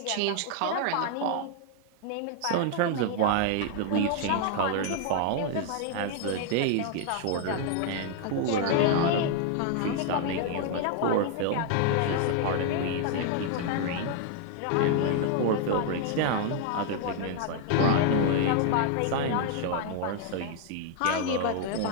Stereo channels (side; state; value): both; different; correlation 0.00